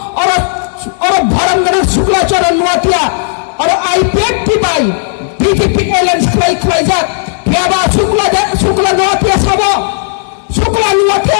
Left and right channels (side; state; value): right; silent; digital silence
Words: और भरंगन शुक्लाचरण नुआतिया और आईपीएफटी बाई बीजेपी एलायंस खलाई जात फेबा शुक्ला